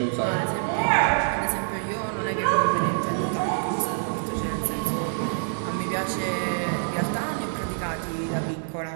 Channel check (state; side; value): silent; left; 60 dB below the other